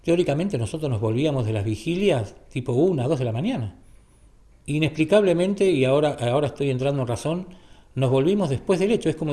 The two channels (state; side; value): identical; both; correlation 1.00